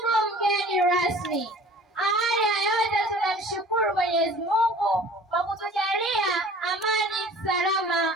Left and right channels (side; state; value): both; normal; correlation 0.47